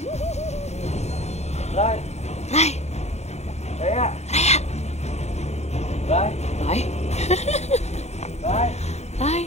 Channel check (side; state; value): right; late; 0.32 ms